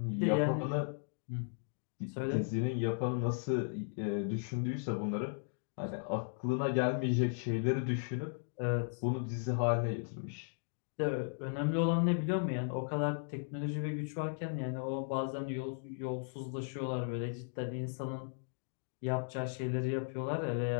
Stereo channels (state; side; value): silent; right; digital silence